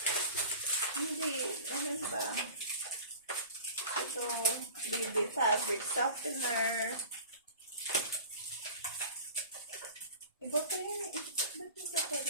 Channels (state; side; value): inverted; both; correlation -0.40